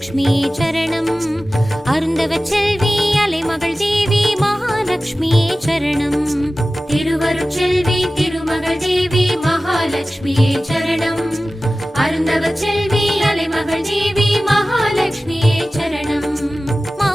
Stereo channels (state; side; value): normal; both; correlation 0.96